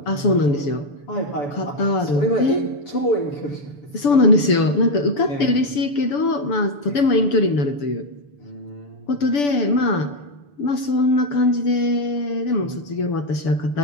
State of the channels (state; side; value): late; right; 6.9 ms